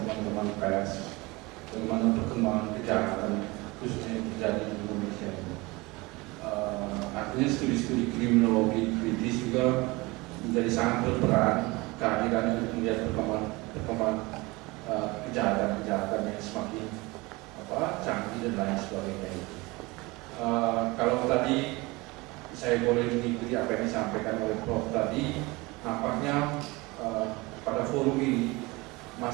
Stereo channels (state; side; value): quieter; left; 23.5 dB